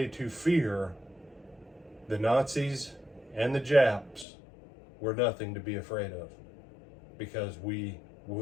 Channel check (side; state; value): right; drops out; at 4.2 s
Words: to fear, the Nazis and the Japs were nothing to be afraid of, because we